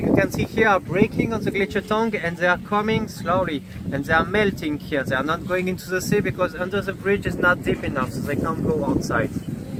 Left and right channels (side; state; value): both; identical; correlation 1.00